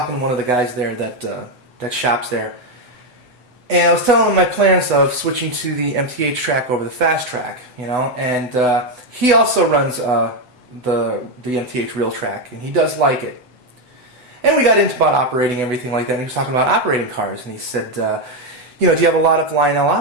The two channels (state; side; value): late; left; 8.1 ms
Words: to one of the guys there that shops there, and I was telling him my plans of switching to the MTH track over the fast track, you know, and he also runs the MTH Realtrax, and he does like it. And we got into about operating everything like that, and he was talking about operating cars, and he said, you know, do you have a lot of Lionel